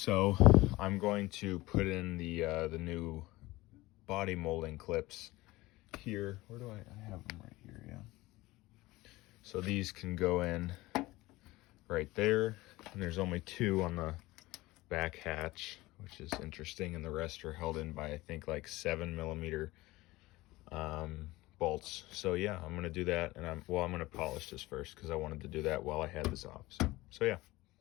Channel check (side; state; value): right; quieter; 19.6 dB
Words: I'm going to put in the new body molding clips here. Where do I have them? Right here. Yeah, so these can go in right there, and there's only 2 on the back hatch, which is interesting, and the rest are held in by I think like 7mm bolts. So yeah, I'm gonna do that, and I'm gonna polish this first because I wanted to do that while I had this off. So So yeah.